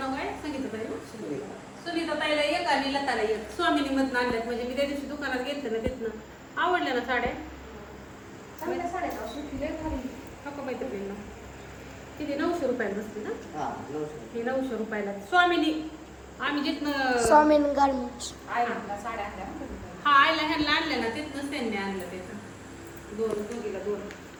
काय सांगितलं ताई ना? सुनीता ताईला एक आणि लताला एक. स्वामिनी मधनं आणल्यात. म्हणजे मी त्या दिवशी दुकानात गेलते ना, तिथनं आवडल्या ना साड्या. चांगल्या साड्या का सुटले खाली नको माहिती ना किती 900 रुपयाला बसते ना. हा 900. ही 900 रुपयाला स्वामिनी. आम्ही जिथनं स्वामीन गार्मेंट्स आयला साड्या आणल्या ना. हा आयला ह्यांना आणल्या ना, तिथनंच त्यांनी आणलं त्याचं. दोघीला दोन.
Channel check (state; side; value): identical; both; correlation 1.00